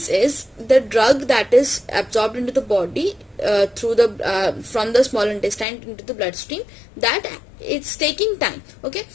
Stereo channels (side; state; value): right; drops out; at 5.7 s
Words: is the drug that is absorbed into the body through the from the small intestine into the bloodstream, that it's taking time. Okay,